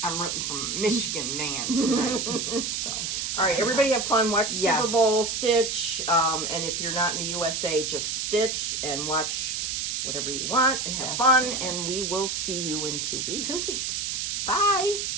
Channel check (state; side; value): noise; right; hiss, 2 dB below the sound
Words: I'm rooting for Michigan man tonight. So. All right, everybody have fun. Watch Yes. Super Bowl, stitch, and if you're not in the USA, just stitch and watch whatever you want and have Yes. fun. And we will see you in 2 weeks. 2 weeks. Bye.